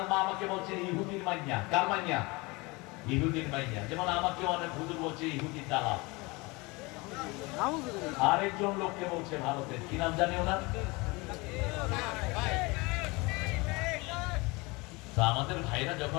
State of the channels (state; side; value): quieter; right; 25.0 dB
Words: আমাকে বলছে ইহুদির মাইয়া। কার মাইয়া? ইহুদির মাইয়া। যেমন আমাকে অনেক হুজুর বলছে ইহুদি দালাল। আরেকজন লোককে বলছে ভারতের, কি নাম জানি ওনার? তো আমাদের ভাইরা